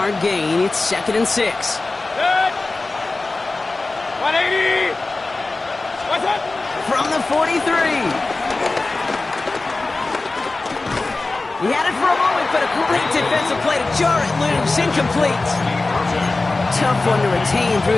gain. It's 2nd and 6. 180. What's up? From the 43. He had it for a moment, but a great defensive play to jar it loose. Incomplete. Tough one to retain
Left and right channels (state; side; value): quieter; right; 3.4 dB